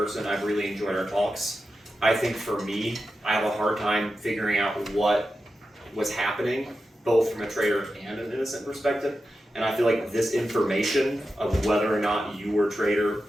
I've really enjoyed our talks. I think for me, I have a hard time figuring out what was happening, both from a traitor and an innocent perspective. And I feel like this information of whether or not you were traitor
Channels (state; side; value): normal; both; correlation 0.91